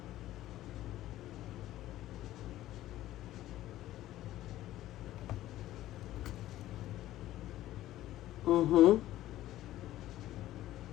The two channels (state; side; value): quieter; right; 14.5 dB